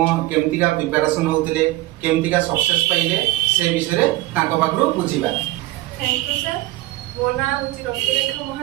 केमतिका प्रिपरेशन होउतिले केमतिका सक्सेस पाइले से विषय रे तांको पाखरु बुझिबा। Thank you sir. मो ना होची रश्मिरेखा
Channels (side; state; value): left; quieter; 17.6 dB